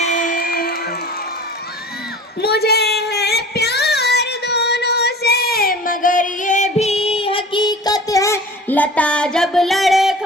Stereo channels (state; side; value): normal; both; correlation 0.41